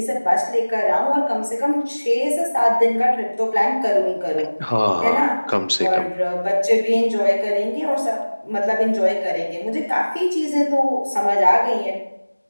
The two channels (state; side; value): inverted; both; correlation -1.00